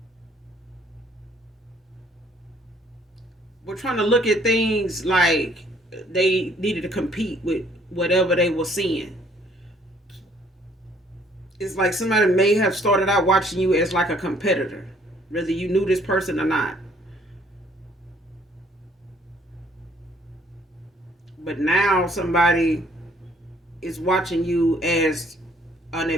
were trying to look at things like they needed to compete with whatever they were seeing. It's like somebody may have started out watching you as like a competitor, whether you knew this person or not. But now somebody is watching you as an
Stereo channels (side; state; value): both; normal; correlation 0.62